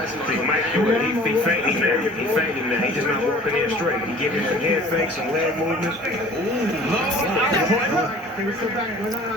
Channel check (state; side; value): normal; both; correlation 0.48